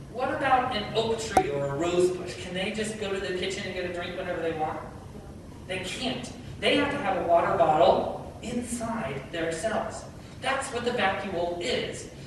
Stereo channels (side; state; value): both; identical; correlation 1.00